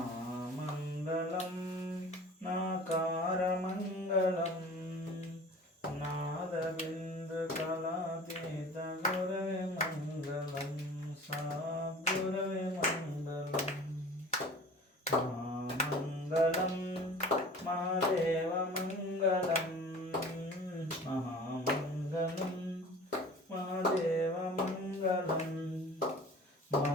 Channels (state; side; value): normal; both; correlation 0.42